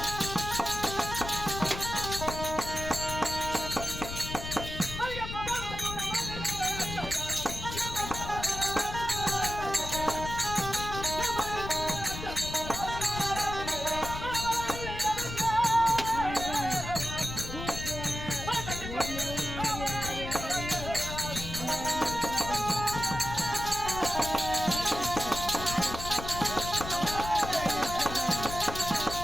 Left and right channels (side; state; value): left; noise; rumble, 8 dB below the sound